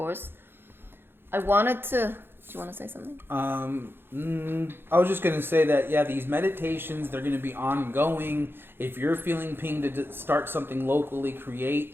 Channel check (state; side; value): late; left; 0.10 ms